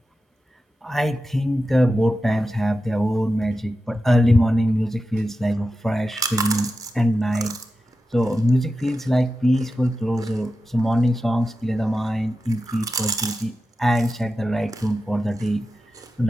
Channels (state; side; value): normal; both; correlation 0.91